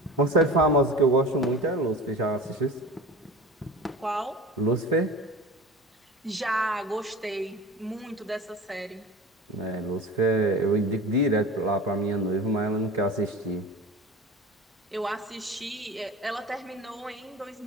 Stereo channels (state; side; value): normal; both; correlation 0.35